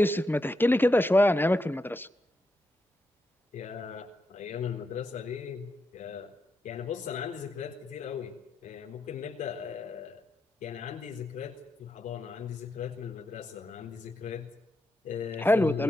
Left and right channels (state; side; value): normal; both; correlation 0.84